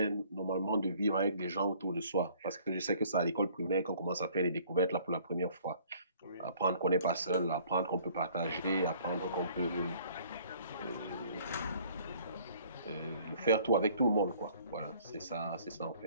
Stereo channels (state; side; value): inverted; both; correlation -0.56